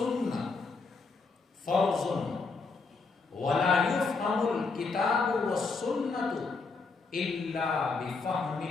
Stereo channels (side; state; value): right; quieter; 4.3 dB